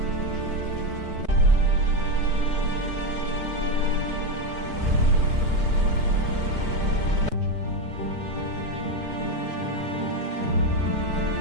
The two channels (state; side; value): late; left; 4.5 ms